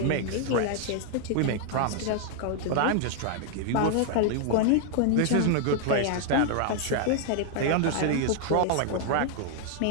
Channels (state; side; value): different; both; correlation 0.00